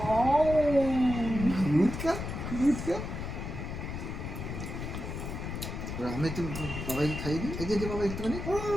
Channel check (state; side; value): noise; left; rumble, 6 dB below the sound